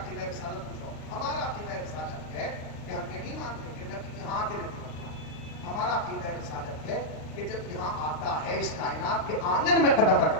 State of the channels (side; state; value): right; late; 38 ms